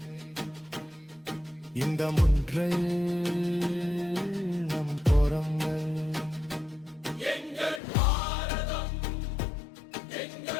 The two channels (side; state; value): right; drops out; at 7.8 s